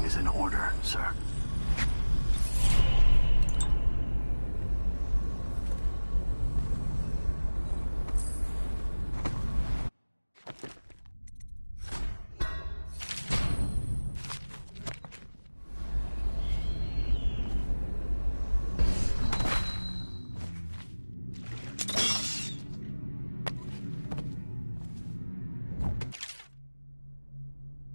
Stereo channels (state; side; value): inverted; both; correlation -1.00